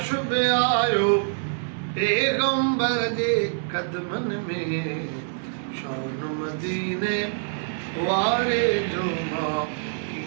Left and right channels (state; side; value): silent; left; digital silence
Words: बि आयो पैगंबर जे क़दमनि में शान मदीने वारे जो मां